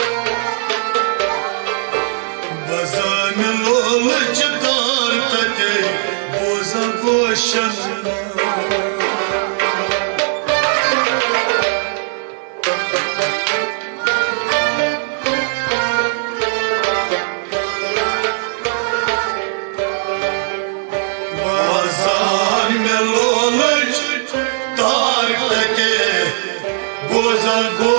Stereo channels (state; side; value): silent; left; digital silence